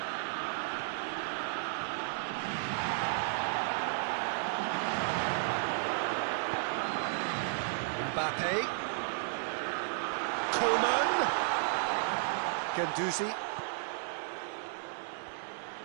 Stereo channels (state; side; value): silent; left; digital silence